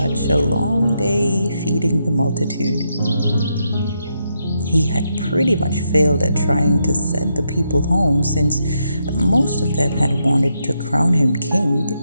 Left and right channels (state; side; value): inverted; both; correlation -0.81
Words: a long day feeding the multitude. He had pretty much failed at trying to send the people home since most of them had wanted to crown him king